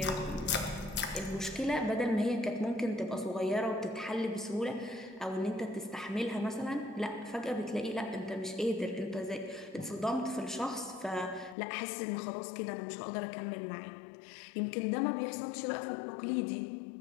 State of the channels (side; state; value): right; drops out; at 11.6 s